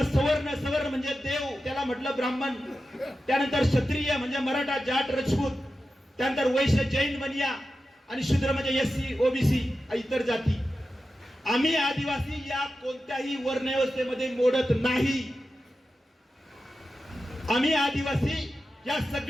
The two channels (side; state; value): both; normal; correlation 0.92